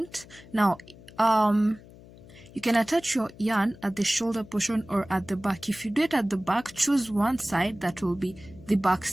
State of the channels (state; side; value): noise; left; hum, 21 dB below the sound